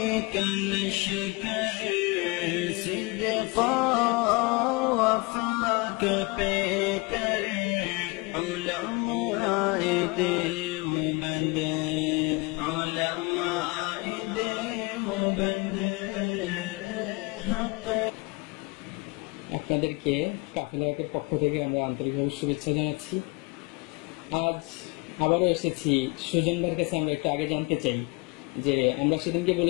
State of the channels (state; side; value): quieter; right; 27.3 dB